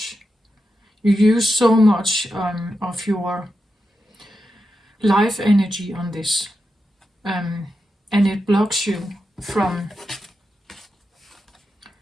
You use so much of your life energy on this, and it blocks you from,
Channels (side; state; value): both; normal; correlation 0.88